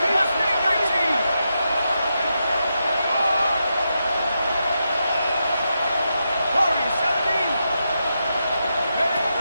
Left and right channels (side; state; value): both; inverted; correlation -0.86